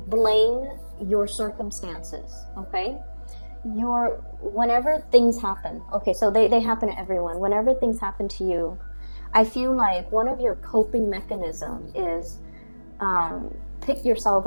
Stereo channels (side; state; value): both; inverted; correlation -1.00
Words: blame your circumstances, okay? Whenever things happen, okay, so they happen to everyone. Whenever things happen to you, I feel like one of your coping mechanisms is pick yourself